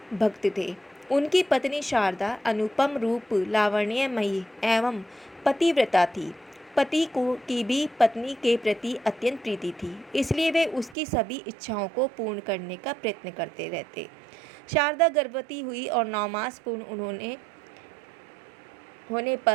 भक्त थे। उनकी पत्नी शारदा अनुपम रूप, लावण्यमयी एवं पतिव्रता थी। पति को की भी पत्नी के प्रति अत्यंत प्रीति थी, इसलिए वे उसकी सभी इच्छाओं को पूर्ण करने का प्रयत्न करते रहते। शारदा गर्भवती हुई और 9 मास पूर्ण होने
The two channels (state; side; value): drops out; left; at 11.0 s